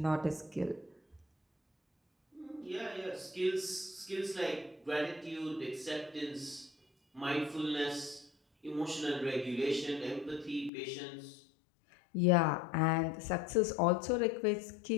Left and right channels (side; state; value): right; drops out; at 10.7 s